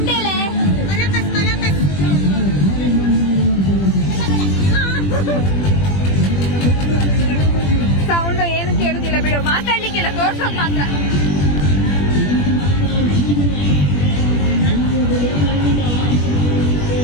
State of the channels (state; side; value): late; right; 21 ms